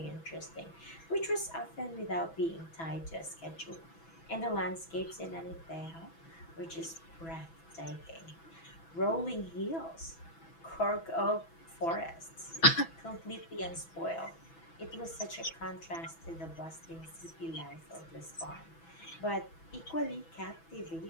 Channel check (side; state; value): right; late; 6.1 ms